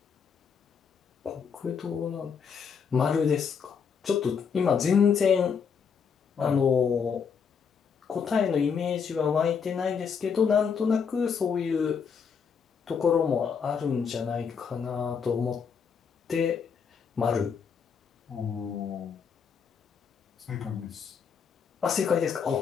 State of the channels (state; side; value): quieter; right; 6.5 dB